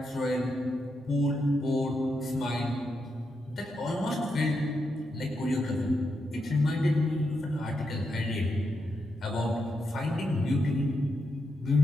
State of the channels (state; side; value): normal; both; correlation 0.84